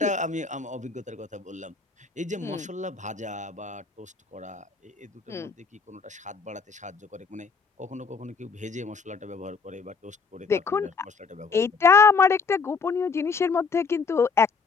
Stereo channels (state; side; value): quieter; right; 5.0 dB